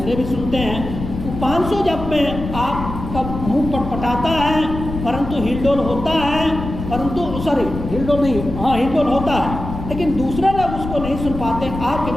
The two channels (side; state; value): left; noise; rumble, 8 dB below the sound